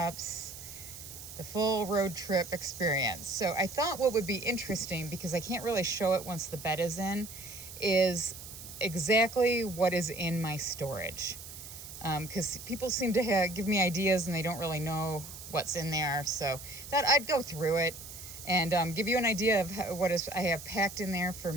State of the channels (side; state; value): right; noise; hiss, 13 dB below the sound